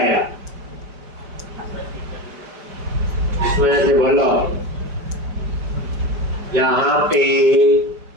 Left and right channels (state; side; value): late; left; 5.1 ms